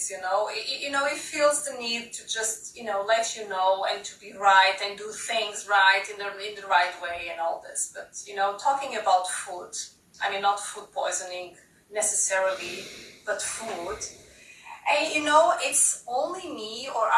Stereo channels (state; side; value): identical; both; correlation 1.00